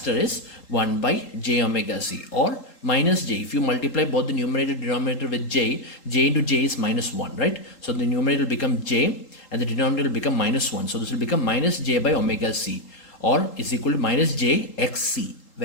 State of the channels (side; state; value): right; late; 3.8 ms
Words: is 1 by j omega c, or minus j. If you multiply both the numerator and denominator with j into j is minus 1, right? So the numerator will become j and the denominator will become minus 1. So this will become minus j by omega c, or is equal to minus j xc,